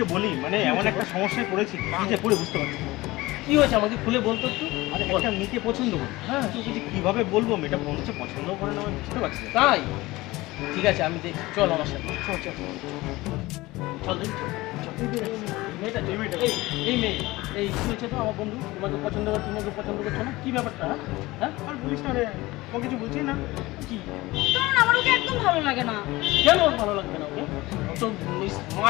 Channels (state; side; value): quieter; right; 19.9 dB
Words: বলি, মানে এমন একটা সমস্যায় পড়েছি, কি যে করে বুঝতে পারছি না। কি হয়েছে আমাকে খুলে বলতো একটু? আরে একটা মেয়েকে পছন্দ করি, হ্যাঁ। তোকে যে কিভাবে বলবো, মেয়েটা মনে হচ্ছে পছন্দও করে না, আমি বুঝতে পারছি না। তাই? ঠিক আছে আমি দেখছি, চল আমার সাথে। চল চল চল দেখি চল। চল। মেয়েটা এই মেয়েটা। এই মেয়ে, এই কি হয়েছে তো আমার বন্ধু তোমাকে পছন্দ করে, তুমি ওকে পছন্দ করছো না, কি ব্যাপারটা? হ্যাঁ হ্যাঁ আর বলিস না রে, ও কিছু বলছি না। কি? কারণ আমার ওকে একদম ভালো লাগে না। কেন ওর ভালো লাগবে না ওকে? ও তো